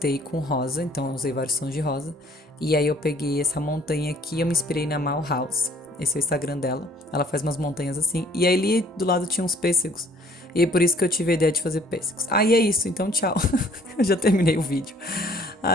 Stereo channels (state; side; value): normal; both; correlation 0.58